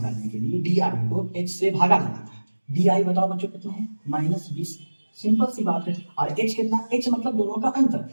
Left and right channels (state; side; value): inverted; both; correlation -1.00